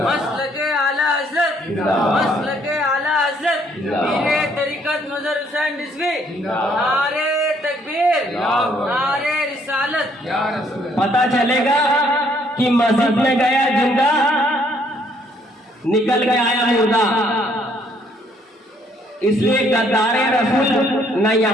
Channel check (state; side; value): normal; both; correlation 0.66